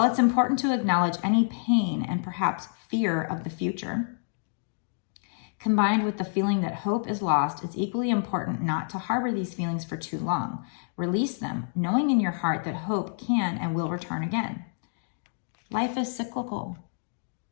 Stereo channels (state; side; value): silent; right; digital silence